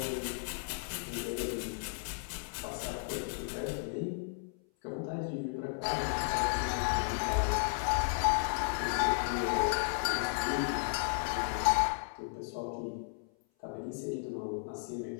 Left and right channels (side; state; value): right; silent; 55 dB below the other